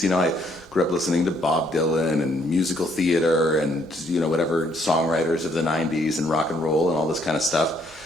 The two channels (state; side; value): normal; both; correlation 0.68